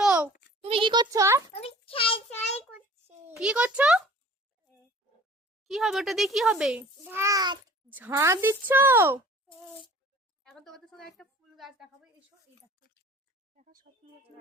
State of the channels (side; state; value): both; normal; correlation 0.47